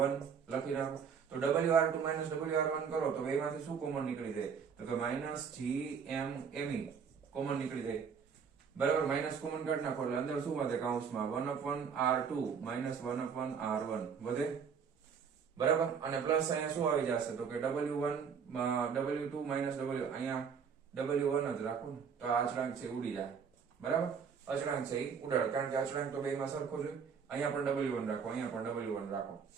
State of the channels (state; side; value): quieter; left; 6.6 dB